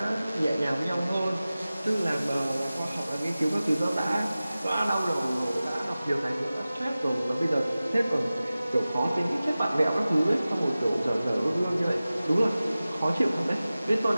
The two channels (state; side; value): inverted; both; correlation -0.96